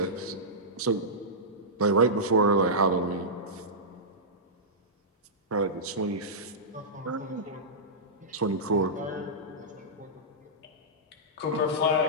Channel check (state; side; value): normal; both; correlation -0.14